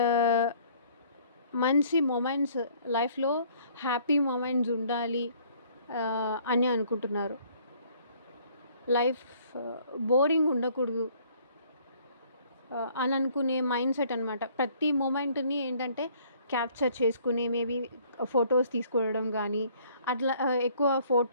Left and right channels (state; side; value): inverted; both; correlation -0.59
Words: మంచి మూమెంట్స్ లైఫ్లో హ్యాపీ మూమెంట్స్ ఉండాలి అని అనుకుంటున్నారు. లైఫ్ బోరింగ్ ఉండకూడదు అని అనుకునే మైండ్ సెట్ అనమాట. ప్రతి మూమెంట్ని ఏంటంటే క్యాప్చర్ చేసుకుని మేబీ ఫొటోస్ తీసుకోవడం కానీ, అట్లా ఎక్కువ